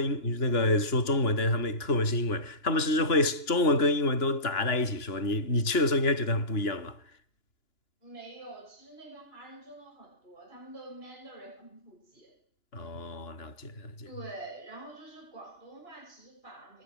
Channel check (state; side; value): late; right; 2.9 ms